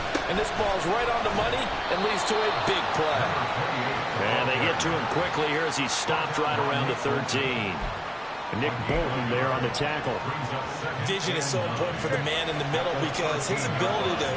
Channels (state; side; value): identical; both; correlation 1.00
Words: And this ball's right on the money and leads to a big play. And they get to him quickly here as he's stopped right around the 13. Nick Bolton there on the tackle. Vision is so important for the man in the middle because his ability